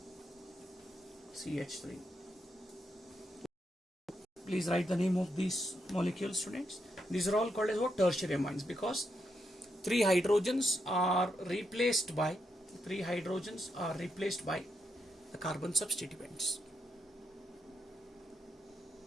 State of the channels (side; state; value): both; normal; correlation 0.81